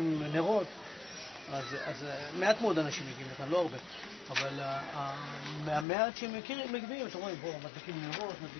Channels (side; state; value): right; drops out; at 5.9 s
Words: נרות. אז מעט מאוד אנשים מגיעים לכאן, לא הרבה. אבל מהמעט שהם מגיעים, אתם רואים, בואו, מדליקים נרות,